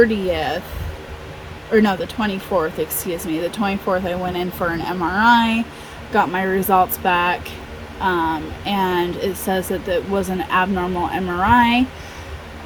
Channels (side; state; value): both; identical; correlation 1.00